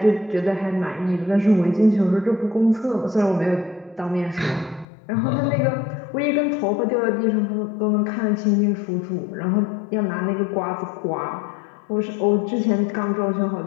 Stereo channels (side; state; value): right; drops out; at 4.9 s